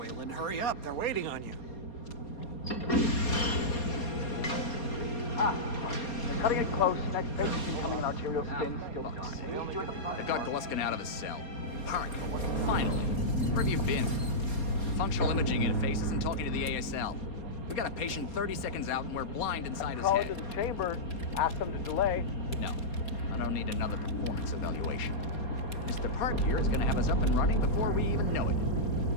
hurry up. They're waiting on you. They're cutting it close. Next patient's becoming an arterial stent. Still dark. You're at the front. They've got Gluskin out of his cell. Park, finally. Where have you been? Functional imaging interfaces and talking to the ASL. We got a patient 30 seconds out and we're blind inside his Call head. into the chamber. Ask them to delay. No, I don't need another performance evaluation. Mr. Park here is gonna have us up and running before we even know it.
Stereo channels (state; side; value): late; right; 4.3 ms